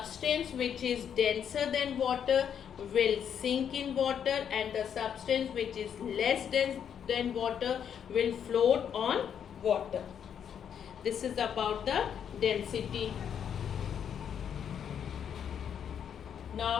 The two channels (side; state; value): right; quieter; 8.3 dB